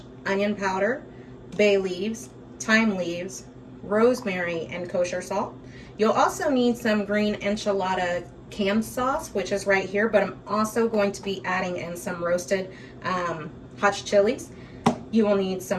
onion powder, bay leaves, thyme leaves, rosemary, and kosher salt. You'll also need some green enchilada canned sauce, which is right here, but I'm also going to be adding in some roasted hot chilies. You will need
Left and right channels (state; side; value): identical; both; correlation 1.00